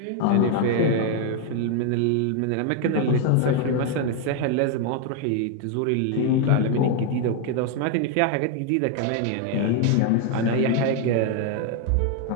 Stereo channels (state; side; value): different; both; correlation 0.01